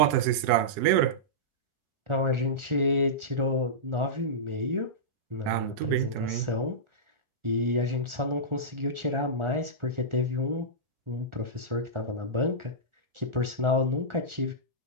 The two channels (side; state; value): left; late; 1.4 ms